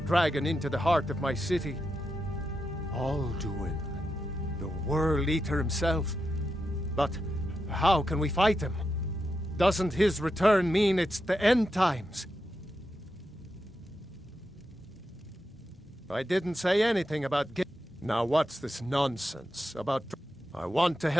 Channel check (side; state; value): both; normal; correlation 0.87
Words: dragon into the heart of my city? Alduin, the World Eater himself. But how can we fight him? Doesn't his return mean it's the end times? I didn't say anything about Now what's this nonsense about... I want to